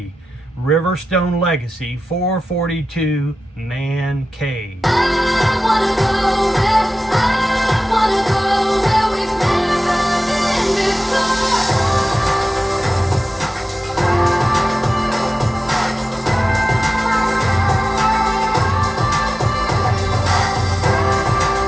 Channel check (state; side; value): normal; both; correlation 0.95